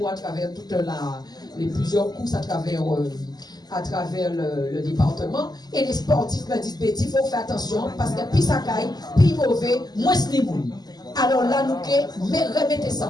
à travers les plusieurs courses à travers le département. Et les sportifs me disent, Betty, il faut faire attention parce que plus ça caille, plus mauvais, moins c'est bon. Alors là, nous remettez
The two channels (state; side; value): late; right; 0.20 ms